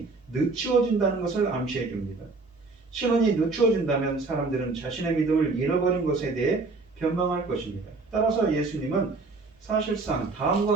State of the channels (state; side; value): quieter; left; 3.8 dB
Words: 늦추어진다는 것을 암시해 줍니다. 신원이 늦추어진다면 사람들은 자신의 믿음을 잃어버린 것에 대해 변명할 것입니다. 따라서 예수님은 사실상